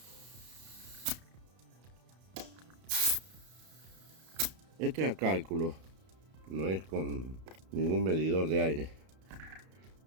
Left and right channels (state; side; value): late; left; 32 ms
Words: Este es a cálculo, no es con ningún medidor de aire.